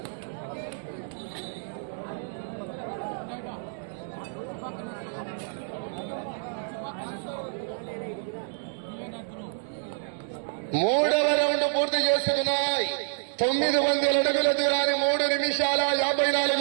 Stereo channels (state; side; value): silent; left; digital silence